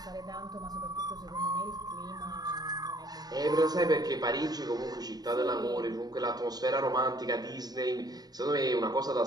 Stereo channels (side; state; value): left; late; 0.19 ms